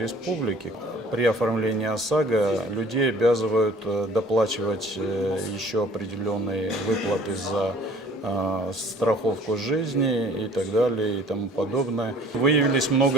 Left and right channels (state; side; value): normal; both; correlation 0.51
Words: При оформлении ОСАГО людей обязывают доплачивать еще определенные выплаты за страховку жизни и так далее и тому подобное. Выявились